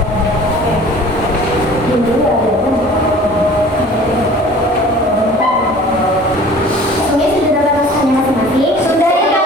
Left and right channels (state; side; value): normal; both; correlation 0.46